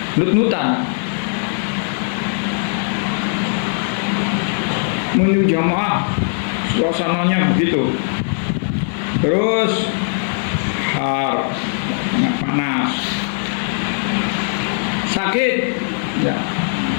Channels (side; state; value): right; silent; 62 dB below the other